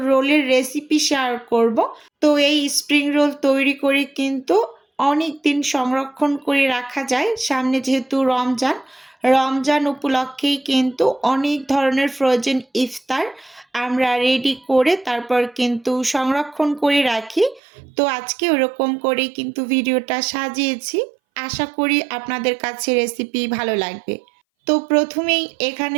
রোলের রেসিপি শেয়ার করব। তো এই স্প্রিং রোল তৈরি করে কিন্তু অনেক দিন সংরক্ষণ করে রাখা যায়। সামনে যেহেতু রমজান উপলক্ষেই কিন্তু অনেক ধরনের ফ্রোজেন ইফতার আমরা রেডি করে তারপর কিন্তু সংরক্ষণ করে রাখি। তো আজকে ওরকম করেই কিন্তু ভিডিওটা সাজিয়েছি। আশা করি আপনাদের কাছে রেসিপি ভালো লাগবে। তো প্রথমেই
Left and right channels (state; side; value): drops out; left; at 17.6 s